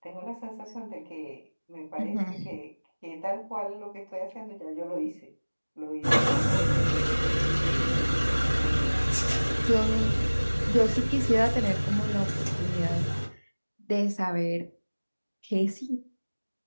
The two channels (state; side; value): inverted; both; correlation -1.00